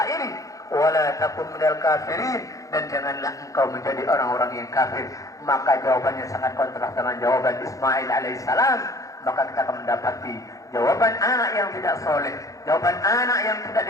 ini, wala takun minal kafirin, dan janganlah engkau menjadi orang-orang yang kafir. Maka jawabannya sangat kontras dengan jawaban Ismail alaihissalam. Maka kita akan mendapati jawaban anak yang tidak soleh, jawaban anak yang tidak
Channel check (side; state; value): right; late; 0.16 ms